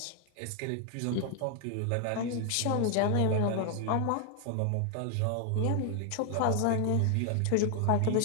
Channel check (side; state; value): both; different; correlation 0.00